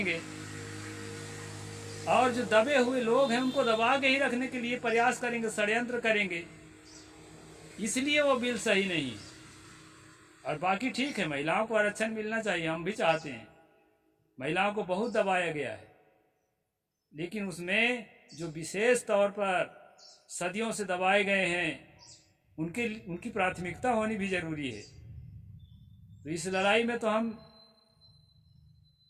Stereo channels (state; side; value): identical; both; correlation 1.00